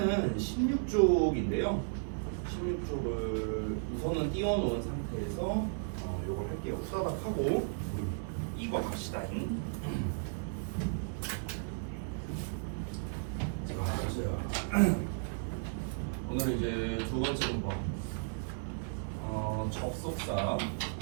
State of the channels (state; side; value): silent; left; digital silence